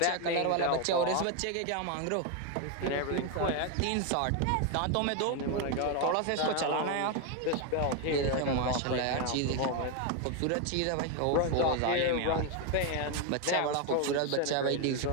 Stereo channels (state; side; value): different; both; correlation 0.01